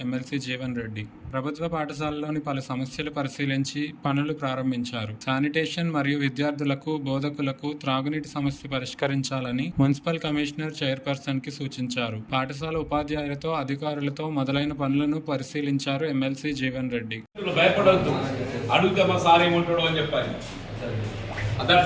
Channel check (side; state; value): both; identical; correlation 1.00